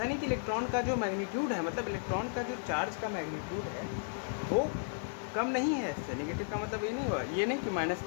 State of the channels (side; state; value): right; silent; digital silence